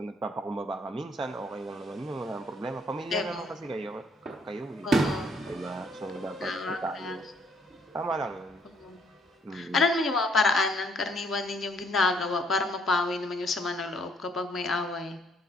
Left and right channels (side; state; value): both; normal; correlation 0.67